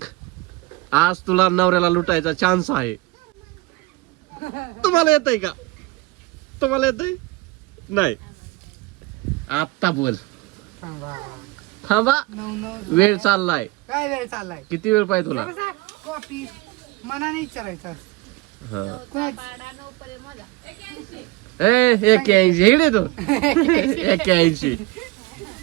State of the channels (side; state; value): left; quieter; 20.6 dB